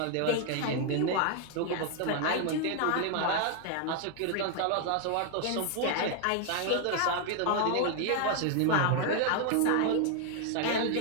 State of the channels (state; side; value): different; both; correlation 0.00